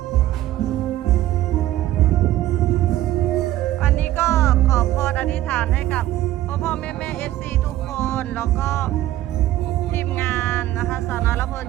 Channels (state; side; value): quieter; left; 14.4 dB